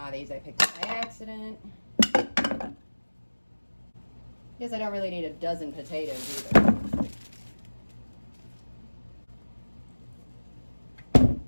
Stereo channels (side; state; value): both; inverted; correlation -1.00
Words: these I picked up by accident. Guess I don't really need a dozen potatoes either.